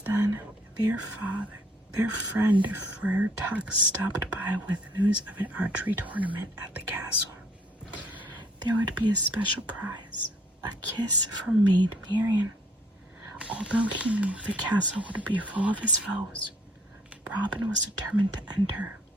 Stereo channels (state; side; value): normal; both; correlation 0.62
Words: then, their friend Friar Tuck stopped by with news of an archery tournament at the castle. There would be a special prize, a kiss from Maid Marian. Although he knew the castle would be full of his foes, Robin was determined to enter.